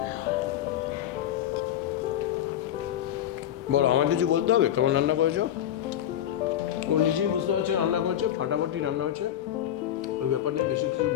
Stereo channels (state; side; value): quieter; right; 11.1 dB